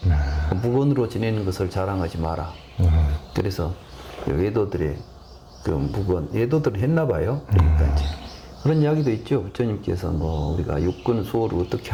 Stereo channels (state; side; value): identical; both; correlation 1.00